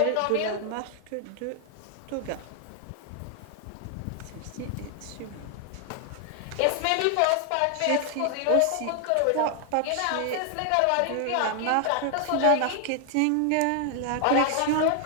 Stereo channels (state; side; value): different; both; correlation 0.00